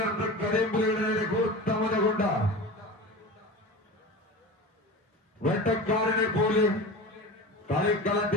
കരിമ്പുലിയുടെ നേരെ കൂർത്തമുന കൊണ്ട് വെട്ടക്കാരനെ പോലെ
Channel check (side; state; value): both; normal; correlation 0.31